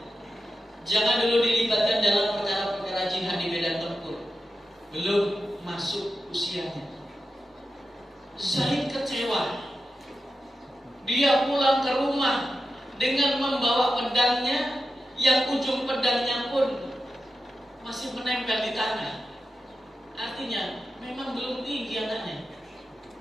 Jangan dulu dilibatkan dalam perkara-perkara jihad di medan tempur. Belum masuk usianya. Zaid kecewa. Dia pulang ke rumah dengan membawa pedangnya, yang ujung pedangnya pun masih menempel di tanah. Artinya memang belum tinggi anaknya,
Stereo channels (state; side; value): normal; both; correlation 0.90